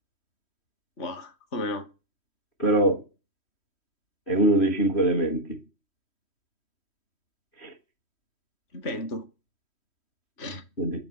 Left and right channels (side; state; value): right; late; 3.1 ms